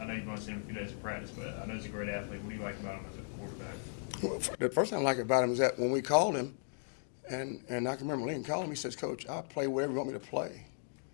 I know you've only seen him a few days of practice, but I know he's a great athlete. What do you like about him as a quarterback? Well, the first thing I like about him is that when we called him, and I can remember Lincoln called him, he says, "Coach, I'll play wherever you want me to play."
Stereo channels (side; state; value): right; silent; digital silence